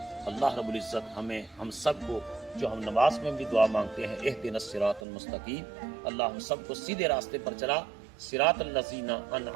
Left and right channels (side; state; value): left; drops out; at 5.0 s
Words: اللہ رب العزت ہم سب کو، جو ہم نماز میں بھی دعا مانگتے ہیں، اہدنا الصراط المستقیم، اللہ ہم سب کو سیدھے راستے پر چلا، صراط الذین